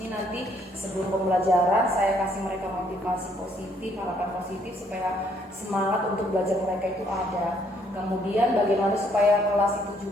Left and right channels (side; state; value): both; normal; correlation 0.67